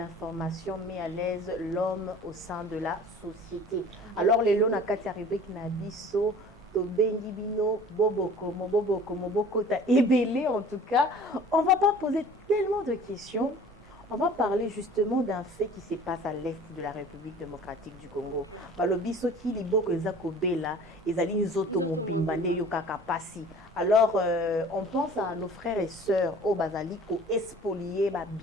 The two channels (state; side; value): normal; both; correlation 0.46